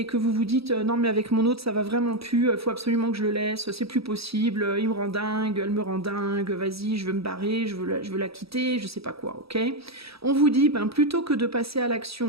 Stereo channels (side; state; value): left; late; 0.77 ms